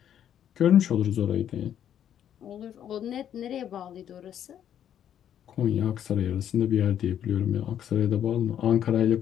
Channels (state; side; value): quieter; right; 9.9 dB